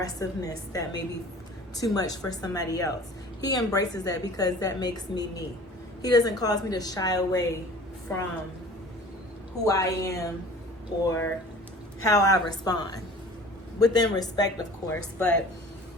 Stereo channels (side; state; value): both; normal; correlation 0.45